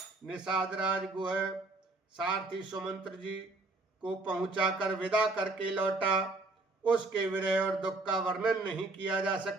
निषाद राज गुह सारथी सुमंत्र जी को पहुंचाकर विदा करके लौटा। उसके विरह और दुख का वर्णन नहीं किया जा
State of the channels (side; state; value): left; quieter; 3.2 dB